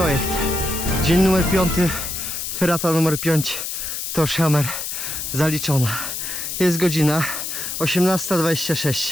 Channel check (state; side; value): noise; left; hiss, 5 dB below the sound